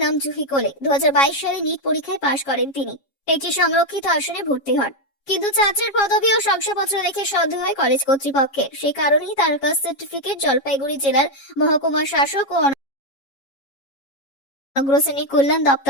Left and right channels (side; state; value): right; late; 7.3 ms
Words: নাম জুহি কোলে। 2022 সালে নিট পরীক্ষায় পাশ করেন তিনি। একটি সংরক্ষিত আসনে ভর্তি হন, কিন্তু ছাত্রের পদবি ও শংসাপত্র দেখে সন্দেহ হয় কলেজ কর্তৃপক্ষের। সেই কারণেই তার কাস্ট সার্টিফিকেট জলপাইগুড়ি জেলার মহকুমা শাসক ও অগ্রশ্রেণী কল্যাণ